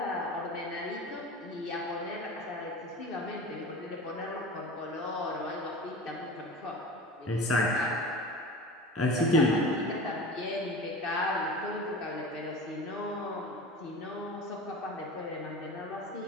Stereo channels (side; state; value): both; normal; correlation 0.33